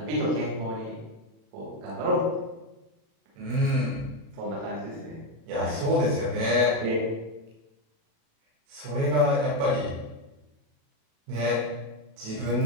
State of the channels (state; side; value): late; left; 36 ms